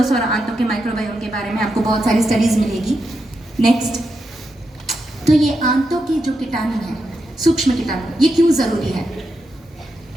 और आंतों के माइक्रोबायोम के बारे में, आपको बहुत सारी स्टडीज मिलेगी। नेक्स्ट, तो ये आंतों के जो कीटाणु हैं, सूक्ष्म कीटाणु, ये क्यों जरूरी है?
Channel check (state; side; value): normal; both; correlation 0.85